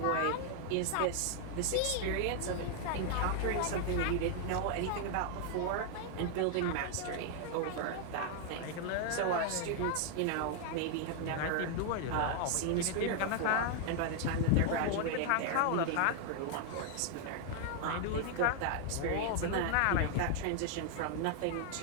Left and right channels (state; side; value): different; both; correlation 0.00